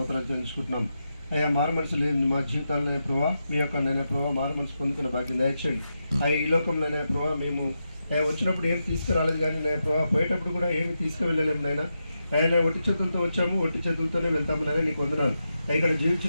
చెల్లించుకుంటున్నాం. అయ్యా మారు మనసు లేదు మా జీవితాలనే ప్రభావ, మీ యొక్క నైనా ప్రభావ మారు మనసు పొందుకున్న భాగ్యం దయచేయండి. అయ్యా ఈ లోకంలోనే ప్రభావ మేము వచ్చినప్పుడు ఏమి తీసుకురాలేదు, కానీ నేను ప్రభావ పోయేటప్పుడు కూడా ఏమి తీసుకువెళ్ళలేము నాయన. ఆయన ఒట్టి చేతులతో వచ్చాము, ఒట్టి చేతులతోనే వెళ్తాము నాయన, నీకు వందనాలు. ఇక్కడ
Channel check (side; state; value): both; inverted; correlation -0.87